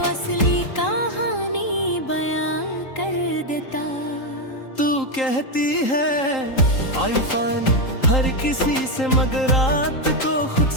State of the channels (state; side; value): late; right; 3.8 ms